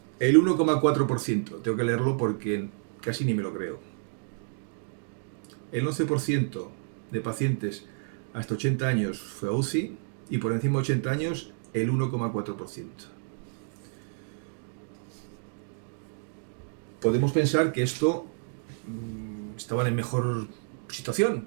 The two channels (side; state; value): left; silent; digital silence